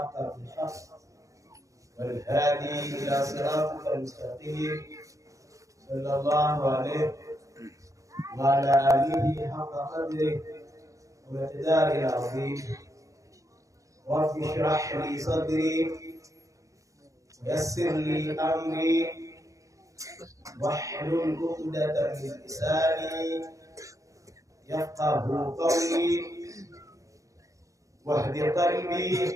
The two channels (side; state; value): left; late; 0.16 ms